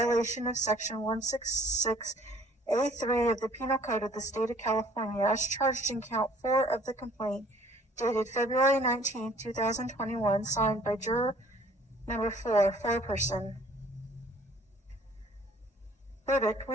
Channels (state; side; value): normal; both; correlation 0.55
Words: of Section 166A3 of the Penal Code of the State of California, as charged in Count 4 of the complaint, dated February 19, 2021, signed by juror number 4, foreperson. Verdict.